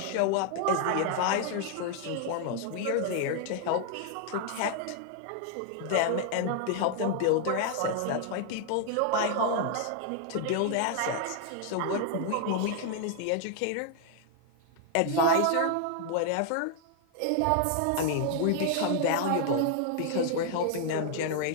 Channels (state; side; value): different; both; correlation 0.00